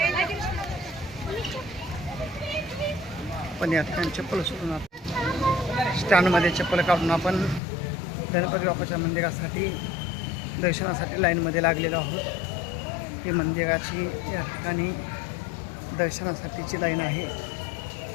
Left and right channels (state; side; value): drops out; right; at 7.6 s